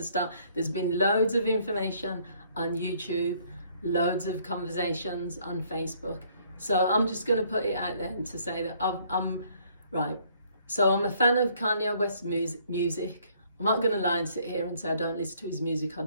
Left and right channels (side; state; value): both; inverted; correlation -0.64